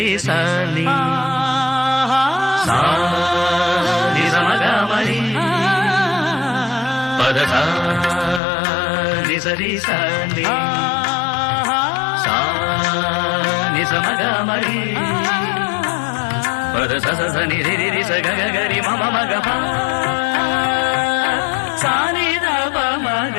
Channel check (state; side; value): drops out; right; at 8.4 s